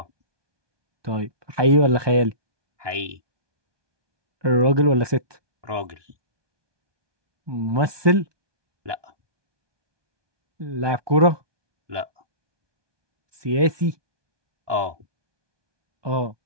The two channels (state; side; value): late; left; 1.2 ms